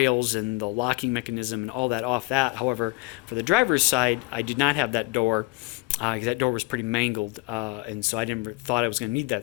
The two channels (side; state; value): right; quieter; 25.4 dB